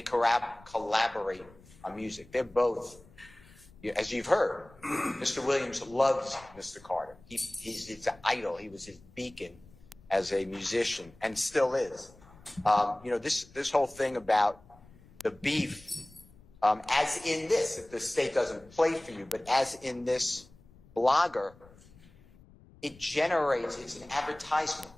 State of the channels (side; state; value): left; noise; rumble, 24 dB below the sound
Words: collaborate on music. They're both, as you've heard, Mr. Williams loves Mr. Carter. He's an idol. He was his beacon as a musician and still is. This whole thing about the beef, as in this, if the state doesn't play for you, but as in this blogger, it's an advertisement,